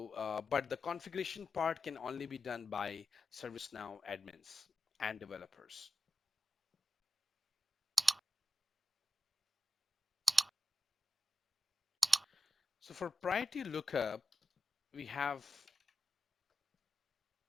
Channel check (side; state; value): both; normal; correlation 0.92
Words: but the configuration part can only be done by ServiceNow admins and developers. So for priority lookup, we have